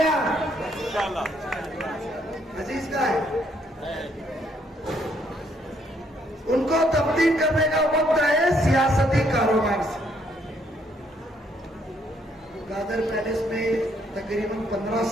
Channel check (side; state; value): both; normal; correlation 0.70